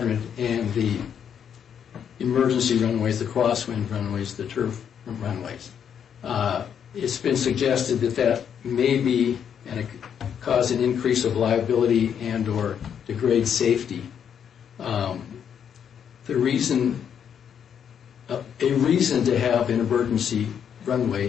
and the emergency runways, the crosswind runways, the turf runways. It's been suggested that may be and it could cause an increase of liability and or degrade safety. A reason to have an emergency runway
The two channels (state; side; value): quieter; right; 8.2 dB